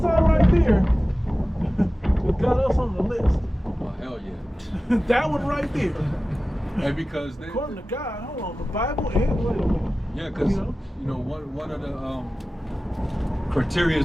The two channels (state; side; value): normal; both; correlation 0.96